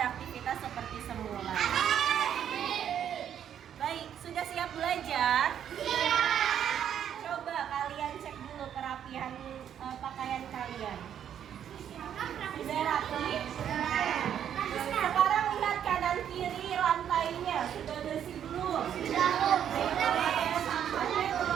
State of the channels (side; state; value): left; quieter; 9.4 dB